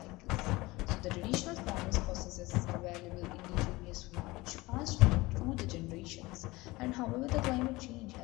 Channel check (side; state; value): right; quieter; 21.1 dB